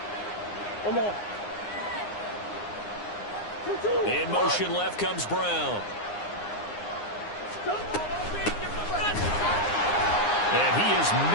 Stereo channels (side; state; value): right; late; 9.7 ms